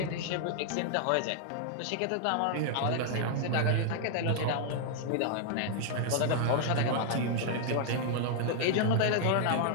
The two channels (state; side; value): different; both; correlation 0.00